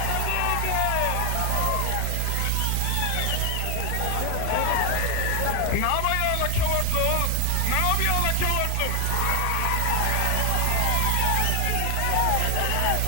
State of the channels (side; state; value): both; different; correlation 0.01